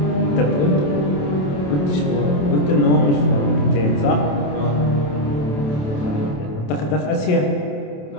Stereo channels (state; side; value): late; right; 27 ms